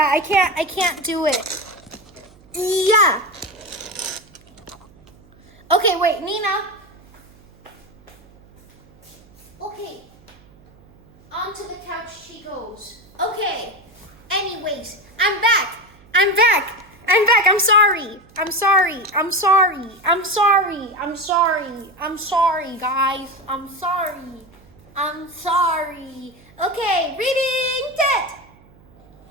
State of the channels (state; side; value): noise; right; hum, 27 dB below the sound